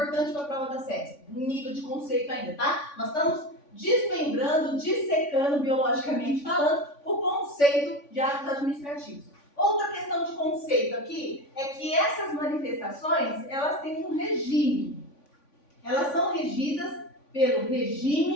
para a prova da SESC, nível de conceito ainda, tá? Nós estamos desmembrando, dissecando, biologicamente falando, o conceito de atos administrativos. Outra questão de conceito aqui é que essas manifestações, elas têm um regime. Elas são regidas pelo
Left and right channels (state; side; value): late; right; 3.5 ms